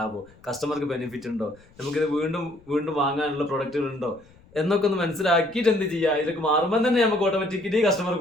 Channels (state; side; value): noise; left; rumble, 27 dB below the sound